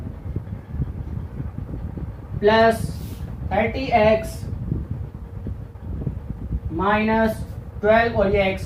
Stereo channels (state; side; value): identical; both; correlation 1.00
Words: plus 30x minus 12, और ये x